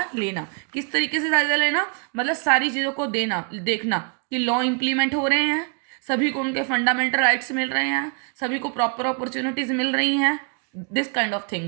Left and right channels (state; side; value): quieter; left; 39.6 dB